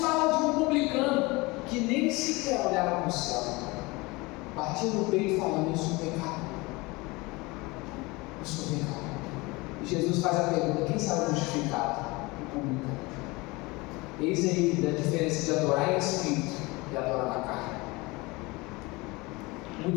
fala de um publicano que nem sequer olhava para o céu, batia no peito falando: eu sou pecado, eu sou pecado. E Jesus faz a pergunta: quem sabe justificado? O publicano. Eis aí a diferença de adorar em espírito e adorar na carne.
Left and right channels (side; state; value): right; quieter; 23.9 dB